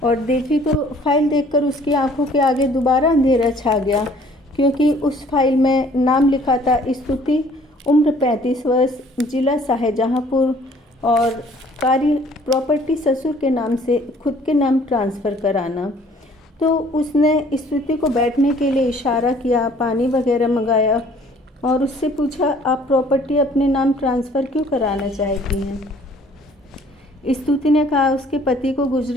और देखी तो फाइल देखकर उसकी आंखों के आगे दोबारा अंधेरा छा गया क्योंकि उस फाइल में नाम लिखा था स्तुति, उम्र 35 वर्ष, जिला शाहजहाँपुर और कार्य प्रॉपर्टी ससुर के नाम से खुद के नाम ट्रांसफ़र कराना। तो उसने स्तुति को बैठने के लिए इशारा किया, पानी वगैरह मंगाया और उससे पूछा, आप प्रॉपर्टी अपने नाम ट्रांसफ़र क्यों कराना चाहती हैं? स्तुति ने कहा उसके पति को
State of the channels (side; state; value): both; normal; correlation 0.56